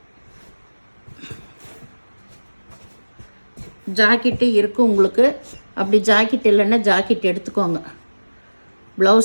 ஜாக்கெட்டு இருக்கும் உங்களுக்கு. அப்படி ஜாக்கெட் இல்லைன்னா ஜாக்கெட் எடுத்துக்கோங்க.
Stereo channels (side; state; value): both; inverted; correlation -1.00